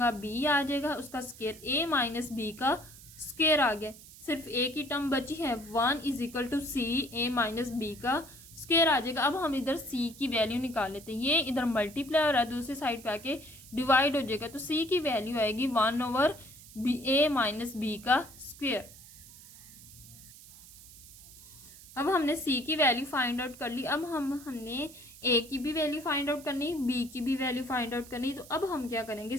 b आ जाएगा, उसका स्क्वायर a माइनस b का स्क्वायर आ गया, सिर्फ a की टर्म बची है 1 is equal to c a minus b का स्क्वायर आ जाएगा। अब हम इधर c की वैल्यू निकाल लेते हैं, ये इधर मल्टीप्लाई हो रहा है, दूसरी साइड पे आके डिवाइड हो जाएगा, तो c की वैल्यू आएगी 1 ओवर a माइनस b का स्क्वायर। अब हमने c की वैल्यू फाइंड आउट कर ली, अब हमने a की भी वैल्यू फाइंड आउट करनी, b की भी वैल्यू फाइंड आउट करनी, तो अब हम क्या करेंगे,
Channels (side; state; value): right; noise; hiss, 19 dB below the sound